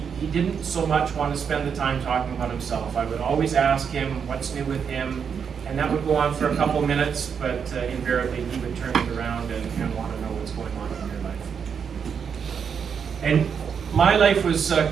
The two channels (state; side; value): quieter; left; 6.9 dB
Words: didn't so much want to spend the time talking about himself. I would always ask him what's new with him, and that would go on for a couple of minutes, but invariably he would turn it around and want to know what's going on in your life. And my life was